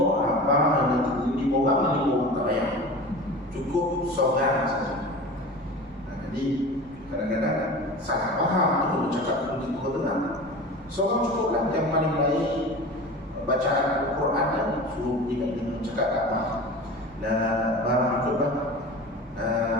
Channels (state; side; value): normal; both; correlation 0.34